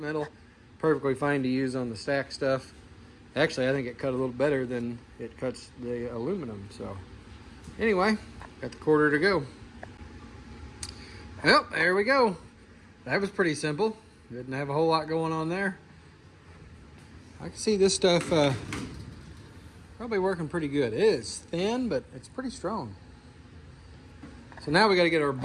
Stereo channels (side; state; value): both; identical; correlation 1.00